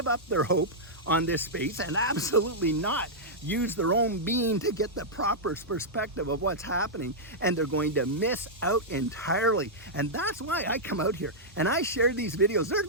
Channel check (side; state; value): both; normal; correlation -0.09